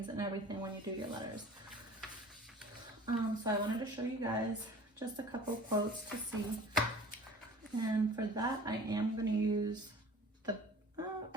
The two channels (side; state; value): both; normal; correlation 0.44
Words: and everything when you do your letters. So I wanted to show you guys just a couple quotes to see. And for that, I am going to use the,